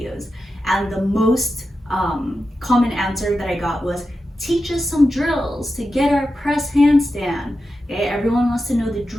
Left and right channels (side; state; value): both; normal; correlation 0.90